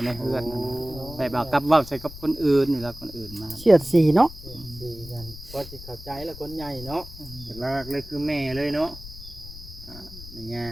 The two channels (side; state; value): left; noise; rumble, 14 dB below the sound